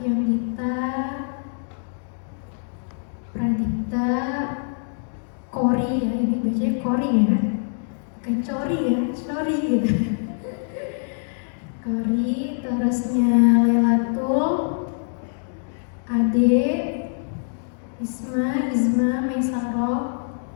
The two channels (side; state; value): right; silent; digital silence